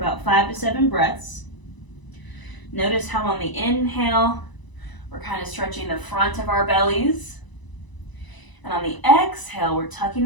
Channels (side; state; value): right; late; 1.0 ms